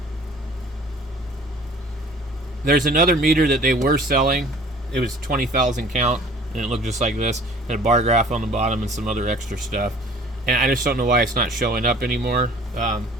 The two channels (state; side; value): normal; both; correlation 0.50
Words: There's another meter that they were selling. It was 20,000 count, and it looked just like this. And a bar graph on the bottom and some other extra stuff. And I just don't know why it's not showing up anymore.